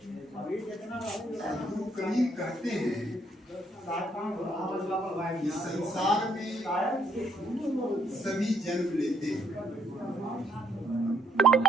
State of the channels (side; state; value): both; normal; correlation 0.70